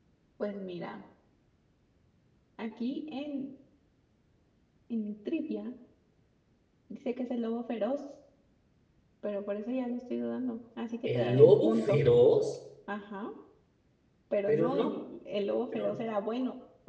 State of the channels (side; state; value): both; identical; correlation 1.00